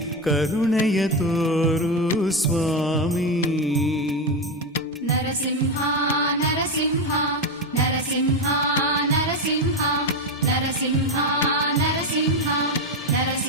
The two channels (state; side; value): normal; both; correlation 0.12